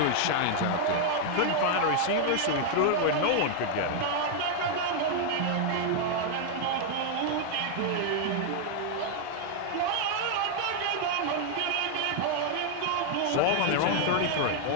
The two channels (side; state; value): both; different; correlation 0.00